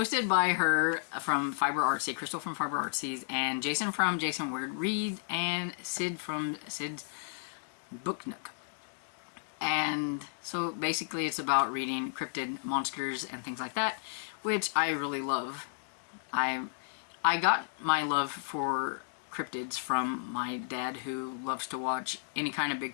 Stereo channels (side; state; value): right; silent; digital silence